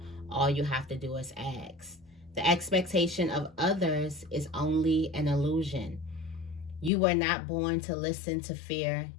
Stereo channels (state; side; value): drops out; right; at 6.9 s